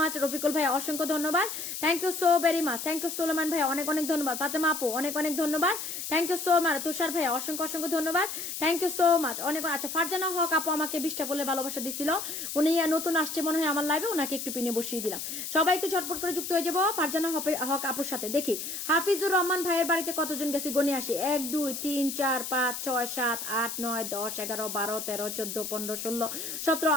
Rafiqul ভাই অসংখ্য ধন্যবাদ, thank you so very much, thank you Suleman ভাই অনেক অনেক ধন্যবাদ। ফাতেমা আপু অনেক অনেক ধন্যবাদ, thank you so much. Tushar ভাই অসংখ্য ধন্যবাদ, থ্যাংক ইউ সো মাচ, অনেক। আচ্ছা, ফারজানা হক আপু আমাকে 20টা বলে ভালোবাসা দিছিল, উনি নতুন আসছে মনে হয় আমার লাইভে, ওনাকে একটু পিনে বসিয়ে দিলাম। সবাই একটু ঝটপট করে যুক্ত হয়ে যাবো ফারজানা হক আপুর সাথে। দেখি হাফিজুর রহমান ভাইয়ের বাড়িতে কতজন গেছে গনে আসি। 1 2 3 4 5 6 7 8 9 10 11 12 13 14 15 16 17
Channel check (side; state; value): left; noise; hiss, 6 dB below the sound